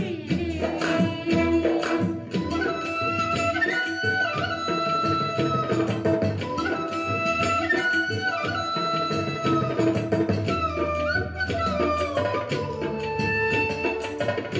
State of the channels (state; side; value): identical; both; correlation 1.00